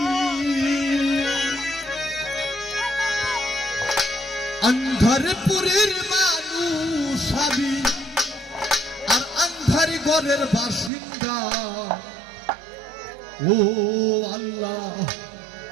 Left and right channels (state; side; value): drops out; left; at 10.9 s